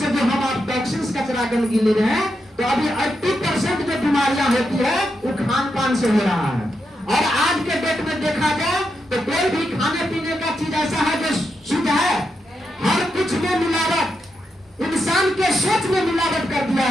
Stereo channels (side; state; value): both; normal; correlation 0.85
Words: जो हम आप टॉक्सिन्स, कचरा, गंदगी ले रहे हैं, तो अभी 80% जो बीमारियां होती है वो खान पान से हो रहा है। और आज के डेट में देखा जाए तो कोई भी खाने पीने का चीज ऐसा है जो शुद्ध है? हर कुछ में मिलावट। इंसान के सोच में मिलावट कर दिया